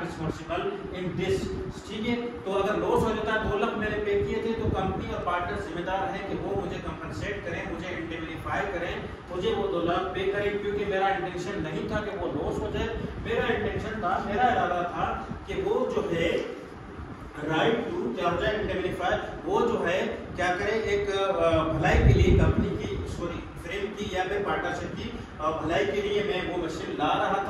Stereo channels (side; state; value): both; identical; correlation 1.00